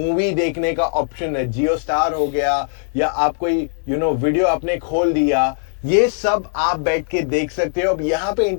देखने का ऑप्शन है. जियो स्टार हो गया, या आप कोई वीडियो आपने खोल दिया, ये सब आप बैठ के देख सकते हो. अब यहाँ पे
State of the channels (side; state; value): right; silent; digital silence